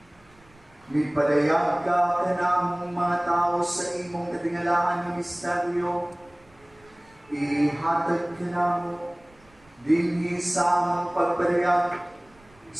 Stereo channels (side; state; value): right; noise; rumble, 29 dB below the sound